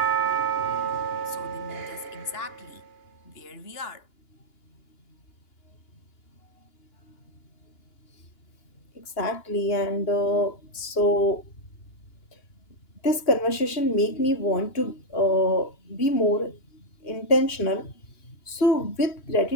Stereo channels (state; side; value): late; right; 2.9 ms